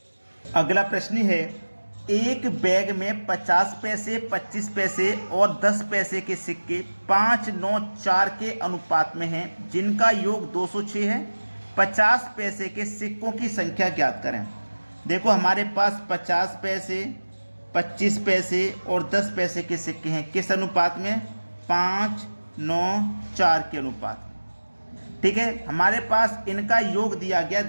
अगला प्रश्न है, एक बैग में 50 पैसे, 25 पैसे और 10 पैसे के सिक्के 5, 9, 4 के अनुपात में हैं, जिनका योग 206 है। 50 पैसे के सिक्कों की संख्या ज्ञात करें। देखो हमारे पास 50 पैसे, 25 पैसे और 10 पैसे के सिक्के हैं, किस अनुपात में? 5, 9, 4 के अनुपात में। ठीक है, हमारे पास इनका योग दिया गया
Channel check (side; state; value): both; inverted; correlation -1.00